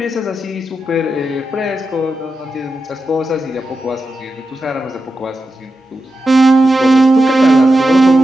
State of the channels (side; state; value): both; normal; correlation 0.89